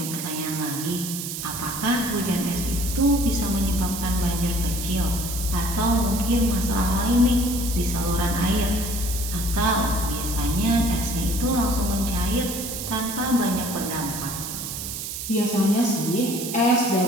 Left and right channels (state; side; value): noise; right; hiss, 6 dB below the sound